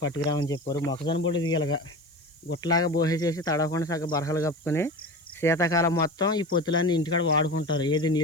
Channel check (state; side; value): noise; right; hiss, 29 dB below the sound